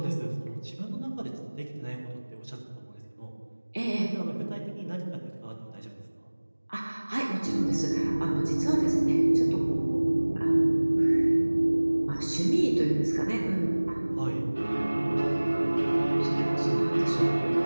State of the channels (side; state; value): both; inverted; correlation -1.00